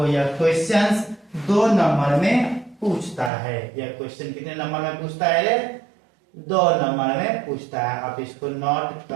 यह क्वेश्चंस 2 नंबर में पूछता है। यह क्वेश्चन कितने नंबर में पूछता है, 2 नंबर में पूछता है। आप इसको नोट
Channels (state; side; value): drops out; left; at 3.3 s